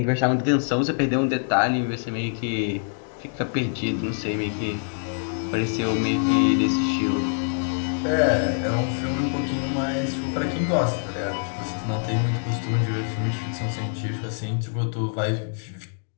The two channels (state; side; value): silent; right; 62 dB below the other